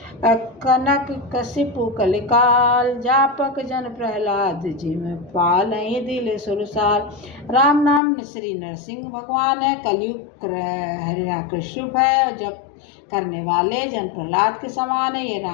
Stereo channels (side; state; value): right; drops out; at 8.0 s